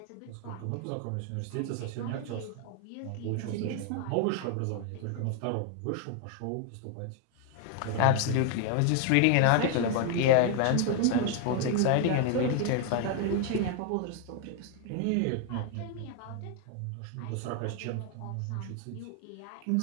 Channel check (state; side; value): different; both; correlation 0.01